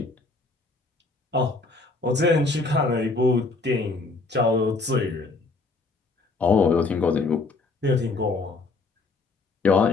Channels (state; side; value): quieter; right; 3.6 dB